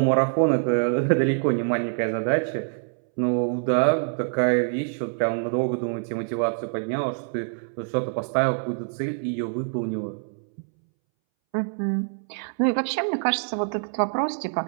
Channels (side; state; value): left; silent; 62 dB below the other